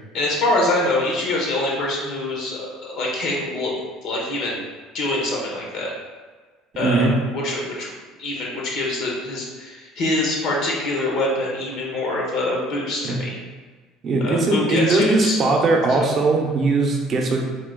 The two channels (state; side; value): normal; both; correlation 0.55